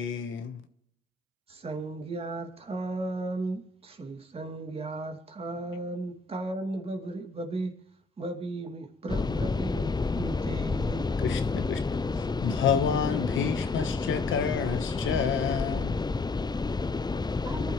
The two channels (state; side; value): quieter; right; 3.4 dB